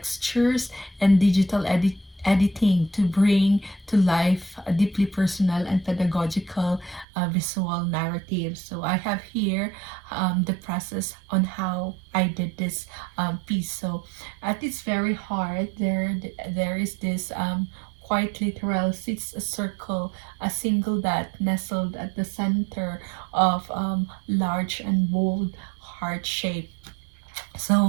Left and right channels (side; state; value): left; drops out; at 7.1 s